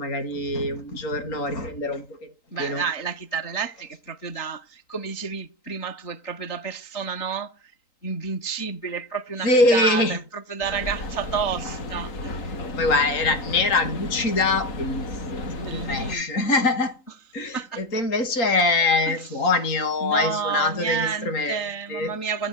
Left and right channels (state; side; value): late; right; 3.8 ms